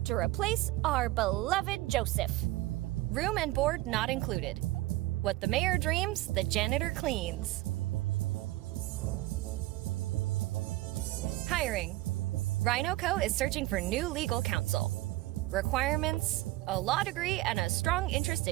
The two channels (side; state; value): left; quieter; 18.1 dB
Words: to replace our beloved Joseph. Room and board not included. What the mayor dreams, the janitor cleans. Hiring. RhinoCo is searching for new legal counsel. Requirements: a law degree and a strong interest